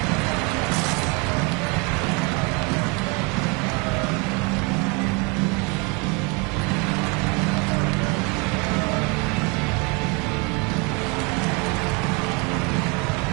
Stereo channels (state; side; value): quieter; left; 28.6 dB